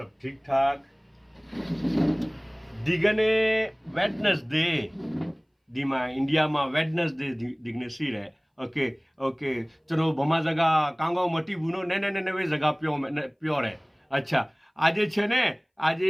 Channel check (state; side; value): identical; both; correlation 1.00